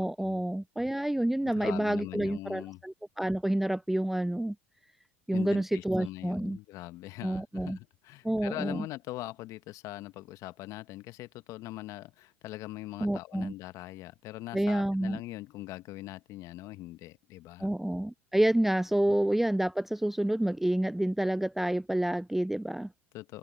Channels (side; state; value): both; normal; correlation 0.96